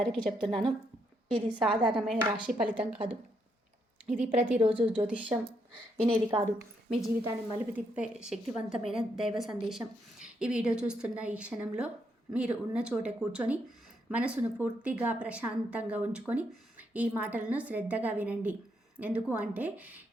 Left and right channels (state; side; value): normal; both; correlation 0.77